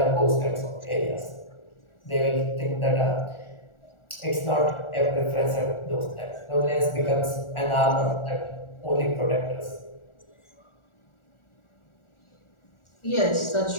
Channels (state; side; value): late; right; 1.4 ms